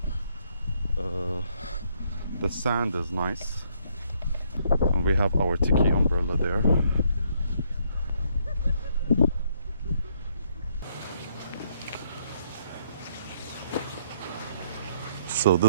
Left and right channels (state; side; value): inverted; both; correlation -0.70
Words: The sand is nice. And we have our tiki umbrella there. So